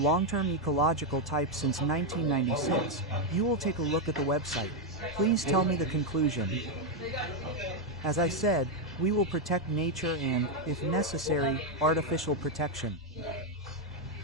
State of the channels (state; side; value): normal; both; correlation 0.03